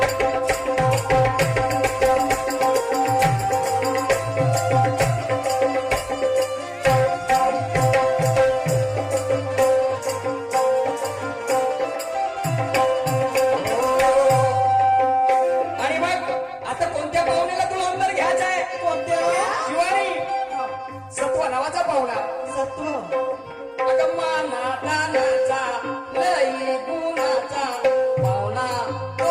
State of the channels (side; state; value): both; identical; correlation 1.00